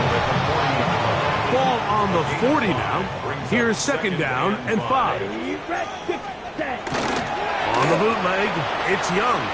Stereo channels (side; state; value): both; identical; correlation 1.00